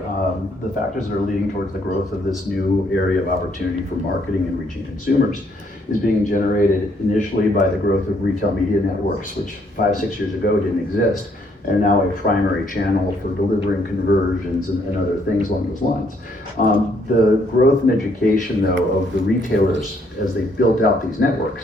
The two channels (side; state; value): both; normal; correlation 0.69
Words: the factors that are leading towards the growth of this new area of opportunity for marketing and reaching consumers is being generated initially by the growth of retail media networks, which 5-6 years ago didn't exist, and are now a primary channel for delivering conversions and other things along those lines. The growth and education, though, of the retailers as they built out these